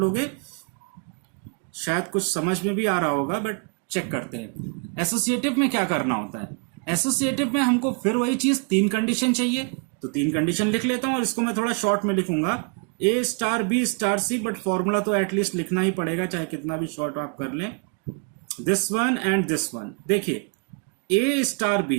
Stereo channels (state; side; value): quieter; left; 36.4 dB